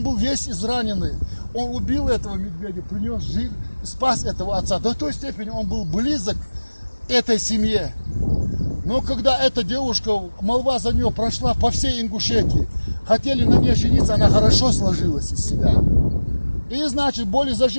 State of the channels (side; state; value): both; inverted; correlation -1.00